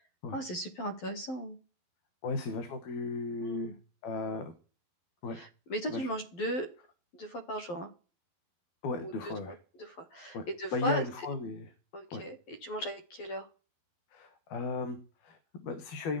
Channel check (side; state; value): right; late; 12 ms